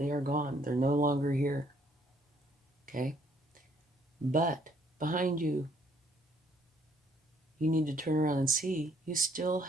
are gone. They're no longer here. Okay? But behind you, you need to turn around and see you still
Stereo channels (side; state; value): both; normal; correlation 0.65